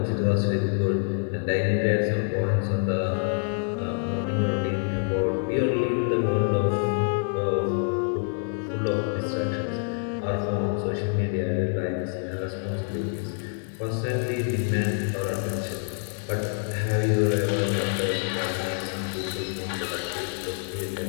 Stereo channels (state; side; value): silent; right; 61 dB below the other